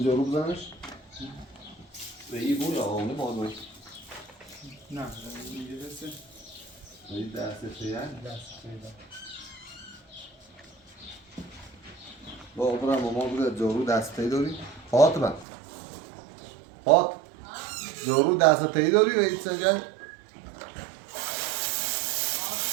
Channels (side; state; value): left; drops out; at 15.5 s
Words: جارو بزنش؟ به این بود آقا نه باید باید نه اینجا دسته این دسته چیه؟ دسته با برم ماما بوده جارو دسته داری؟ فاطمه فاط جارو دسته داری و این سجن؟